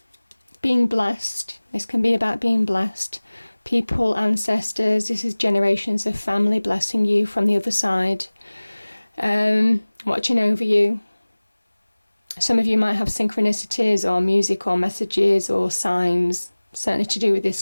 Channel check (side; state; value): both; inverted; correlation -1.00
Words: being blessed. This can be about being blessed. People, ancestors, this is generations of family blessing you from the other side. Watching over you. Some of you might have synchronicities or music or messages or signs, certainly to do with this